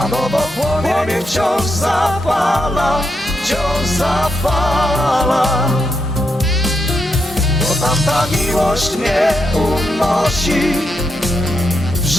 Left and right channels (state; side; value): normal; both; correlation 0.82